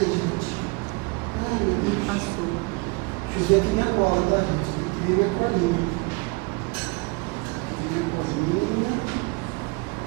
gente? Ai, meu Deus. Deixa eu ver aqui minha cola, tá, gente? Tem que ver minha colinha.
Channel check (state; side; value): quieter; left; 28.1 dB